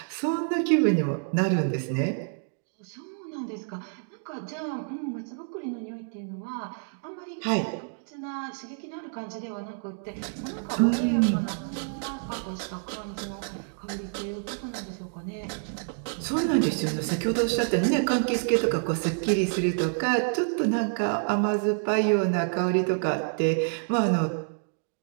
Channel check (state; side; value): silent; left; digital silence